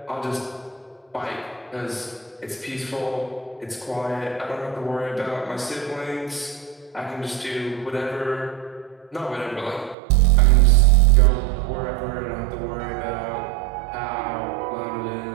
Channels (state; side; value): drops out; left; at 10.0 s